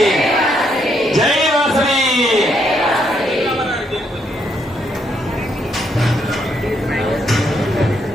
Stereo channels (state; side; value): normal; both; correlation 0.74